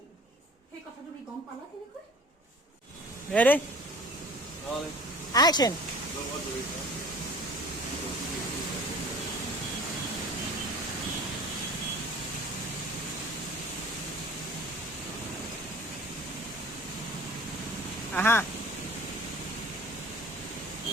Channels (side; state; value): both; normal; correlation 0.45